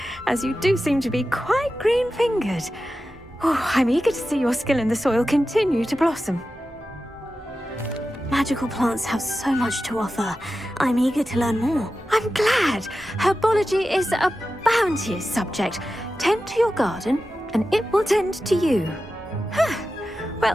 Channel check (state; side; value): normal; both; correlation 0.93